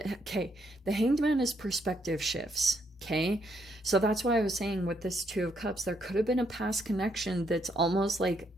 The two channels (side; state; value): both; normal; correlation 0.74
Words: okay, the Hanged Man is perspective shifts. Okay, so that's why I was saying with this Two of Cups, there could have been a past connection that's almost like